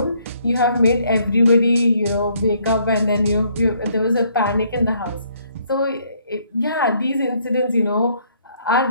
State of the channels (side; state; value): both; inverted; correlation -0.67